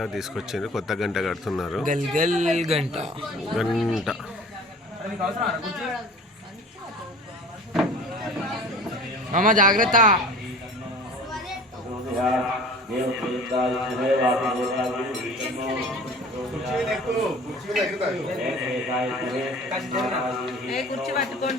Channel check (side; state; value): both; normal; correlation 0.44